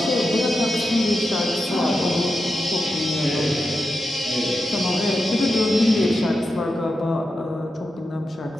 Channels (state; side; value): normal; both; correlation 0.89